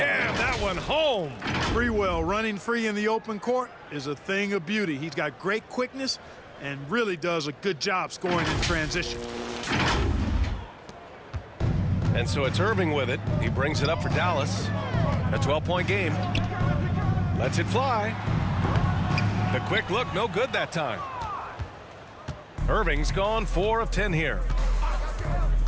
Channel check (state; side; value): identical; both; correlation 1.00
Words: that one home. Sprewell running free in the open court is a thing of beauty. He's got great quickness and really does a good job scoring in transition. And so it's Irving with it. He brings it up for Dallas. A 12-point game. Lets it fly. The quick look, no good that time. Irving's gone 4 of 10 here.